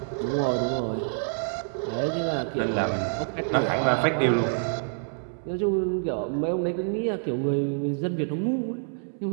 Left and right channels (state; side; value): silent; left; 60 dB below the other